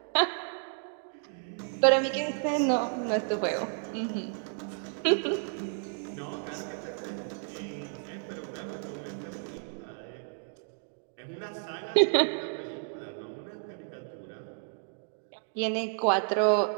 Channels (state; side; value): silent; left; 57 dB below the other